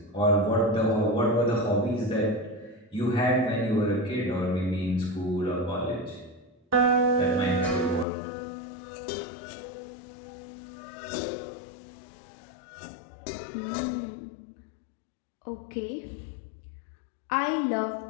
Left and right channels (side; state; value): right; drops out; at 8.1 s